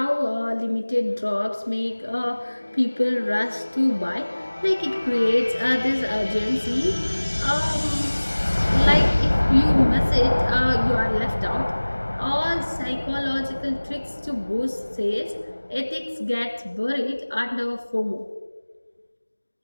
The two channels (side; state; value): both; inverted; correlation -1.00